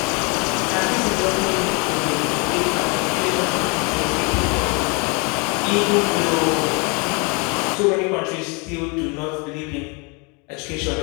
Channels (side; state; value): right; quieter; 31.4 dB